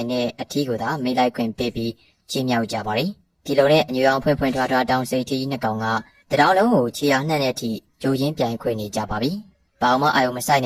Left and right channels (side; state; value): both; identical; correlation 1.00